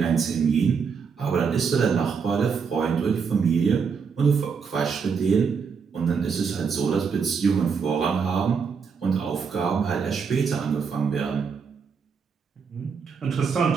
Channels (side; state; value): left; quieter; 6.0 dB